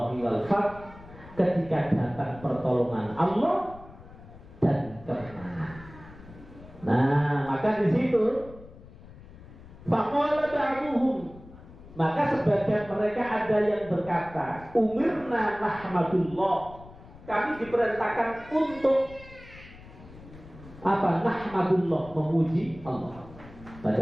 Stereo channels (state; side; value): noise; left; rumble, 19 dB below the sound